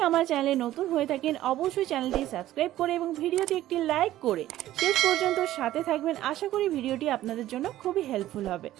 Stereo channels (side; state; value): left; quieter; 14.1 dB